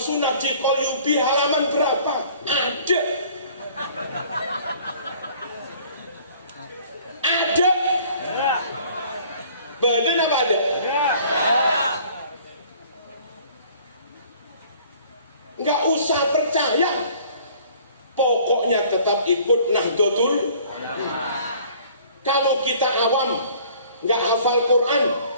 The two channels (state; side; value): inverted; both; correlation -0.53